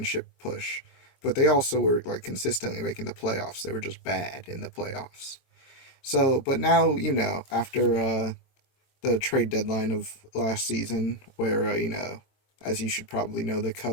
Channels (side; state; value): right; late; 23 ms